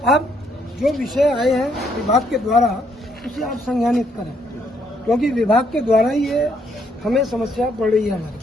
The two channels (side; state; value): both; normal; correlation 0.71